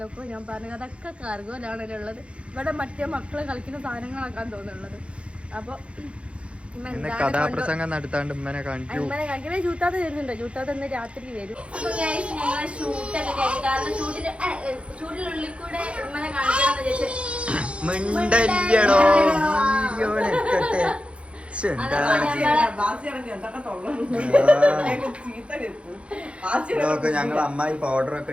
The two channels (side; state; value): left; late; 0.060 ms